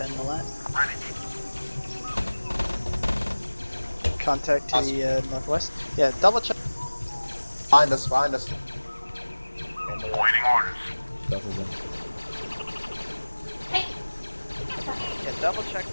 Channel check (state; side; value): inverted; both; correlation -1.00